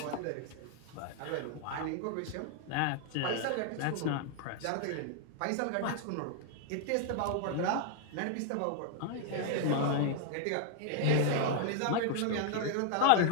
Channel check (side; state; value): both; different; correlation 0.00